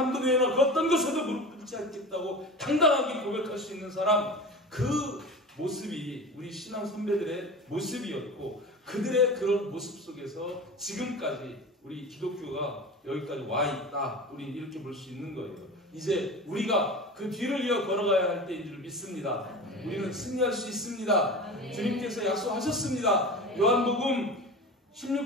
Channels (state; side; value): normal; both; correlation 0.32